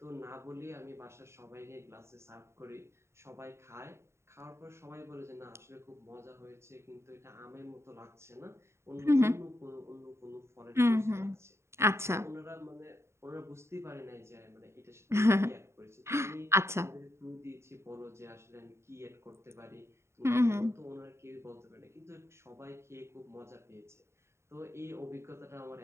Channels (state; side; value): late; left; 0.13 ms